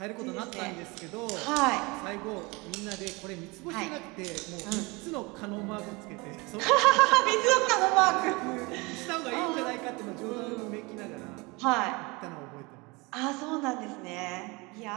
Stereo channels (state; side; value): quieter; left; 25.8 dB